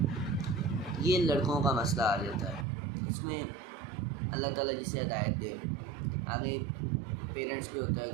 ये लड़कों का मसला आ जाता है। इसमें अल्लाह ताला जिसे हिदायत दे। आगे पेरेंट्स पे होता है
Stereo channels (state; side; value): drops out; left; at 2.7 s